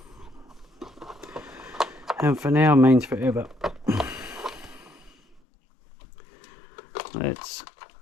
And for now means forever. Let's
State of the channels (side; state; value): right; drops out; at 5.4 s